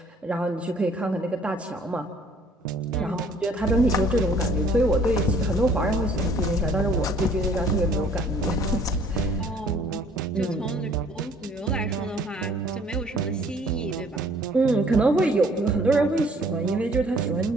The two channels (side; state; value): both; normal; correlation 0.58